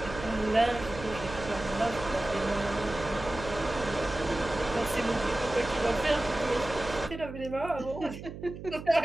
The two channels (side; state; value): right; noise; hum, 11 dB below the sound